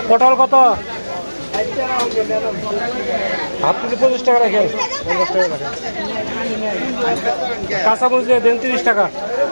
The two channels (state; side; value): inverted; both; correlation -1.00